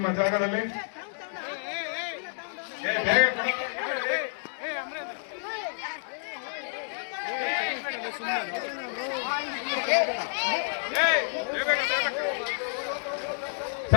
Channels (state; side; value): silent; right; digital silence